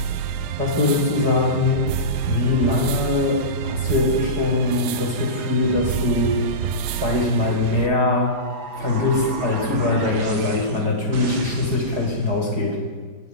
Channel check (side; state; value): left; late; 5.2 ms